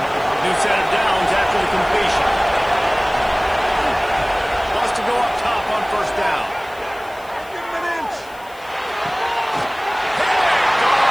New set of downs after the completion. Wants to go up top on first down.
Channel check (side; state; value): left; noise; hiss, 24 dB below the sound